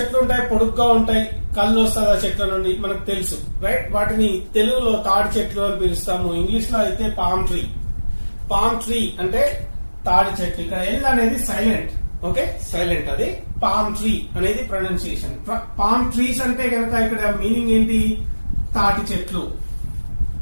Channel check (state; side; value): inverted; both; correlation -1.00